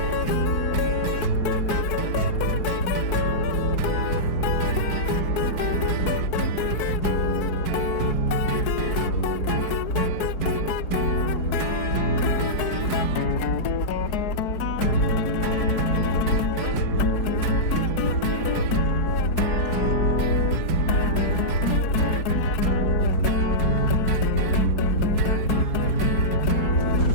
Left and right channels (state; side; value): late; right; 4.7 ms